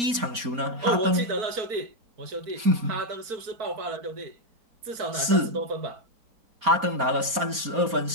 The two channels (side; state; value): left; late; 4.2 ms